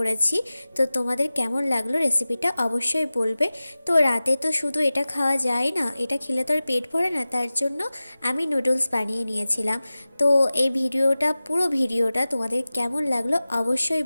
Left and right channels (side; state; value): both; inverted; correlation -0.97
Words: তো তোমাদের কেমন লাগলো রেসিপিটা অবশ্যই বলবে। তো রাতে তো শুধু এটা খাওয়া যায় না, এটা খেলে তো আর পেট ভরে না, তার জন্য আমি নুডলস বানিয়ে নিয়েছিলাম। তো এই ভিডিওটা, পুরো ভিডিওটা তোমাদের কেমন লাগলো অবশ্যই